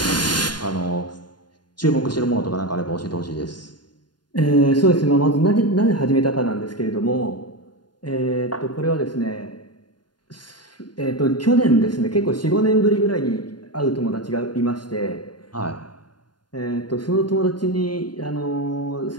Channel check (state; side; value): late; right; 0.71 ms